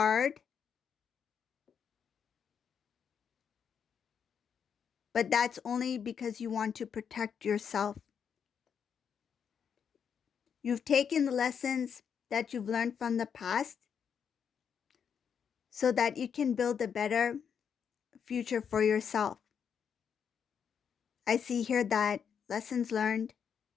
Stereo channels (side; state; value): right; quieter; 7.3 dB